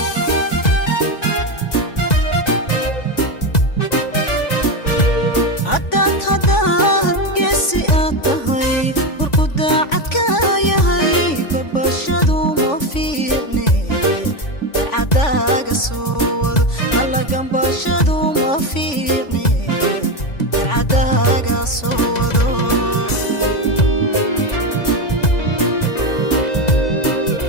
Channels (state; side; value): late; right; 2.0 ms